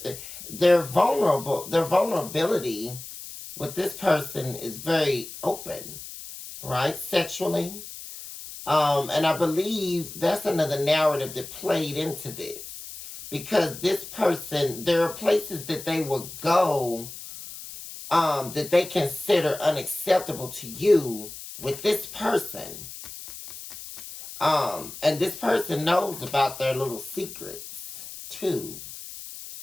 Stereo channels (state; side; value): noise; left; hiss, 12 dB below the sound